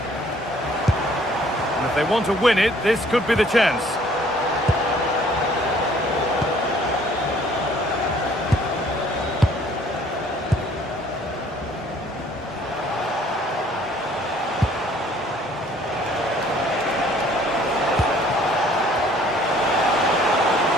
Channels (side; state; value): both; normal; correlation 0.58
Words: And if they want to win it, this could be the chance.